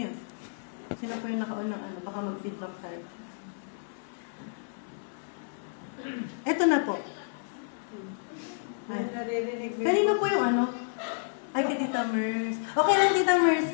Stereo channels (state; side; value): silent; right; digital silence